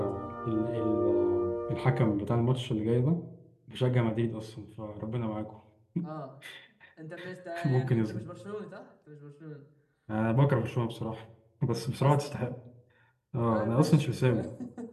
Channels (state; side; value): identical; both; correlation 1.00